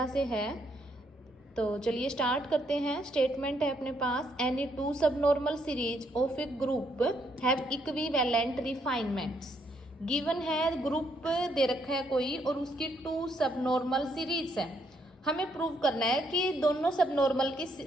से है। तो चलिए स्टार्ट करते हैं। स्टेटमेंट है अपने पास, any two subnormal series of a group have equivalent refinements. Given है, ग्रुप दे रखा है कोई और उसकी टू सबनॉर्मल सीरीज है। हमें प्रूव करना है कि दोनों सबनॉर्मल की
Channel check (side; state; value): both; normal; correlation 0.73